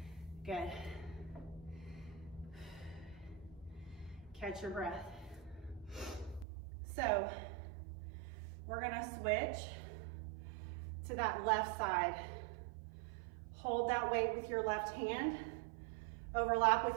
Good. Catch your breath. So we're gonna switch to that left side. Hold that weight with your left hand. Overlap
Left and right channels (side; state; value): left; drops out; at 6.5 s